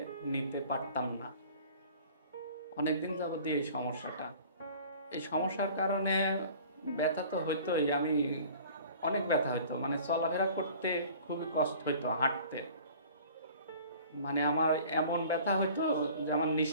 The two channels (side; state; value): both; inverted; correlation -0.47